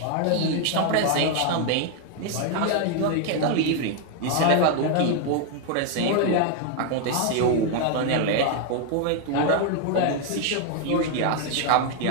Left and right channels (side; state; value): both; different; correlation 0.00